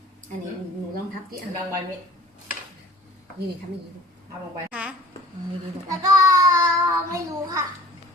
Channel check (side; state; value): both; normal; correlation 0.50